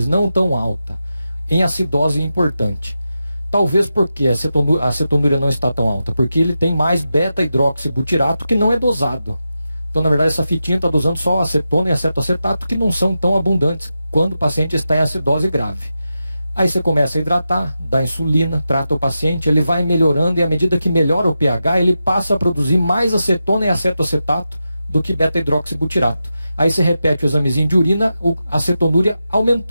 não tão alta, em acidose importante. Talvez porque a cetonúria não está tão alta, porque ele tem mais beta-hidroxibutirato que não é dosado. Então, na verdade, essa fitinha está dosando só acetona e acetoacetato, que não são tão abundantes quando o paciente está em acidose grave. Aí você começa a hidratar, dá insulina, trata o paciente, ele vai melhorando e à medida que melhora o pH, ele passa a produzir mais acetona e acetoacetato do que beta-hidroxibutirato. Aí você repete o examezinho de urina, a cetonúria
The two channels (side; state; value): both; inverted; correlation -0.89